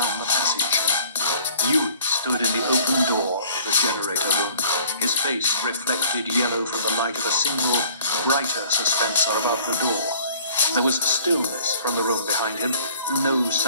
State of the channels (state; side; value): inverted; both; correlation -0.52